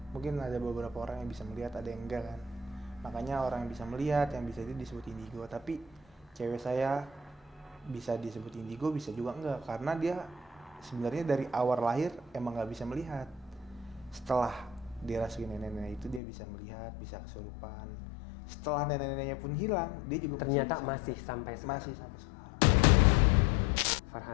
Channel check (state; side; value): drops out; right; at 16.2 s